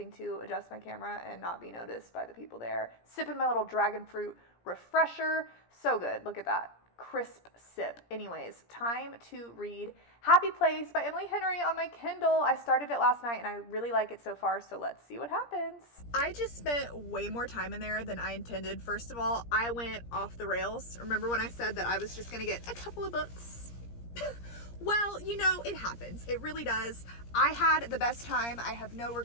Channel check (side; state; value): right; late; 17 ms